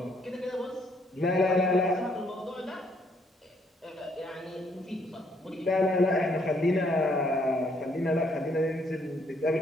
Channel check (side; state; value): both; normal; correlation 0.69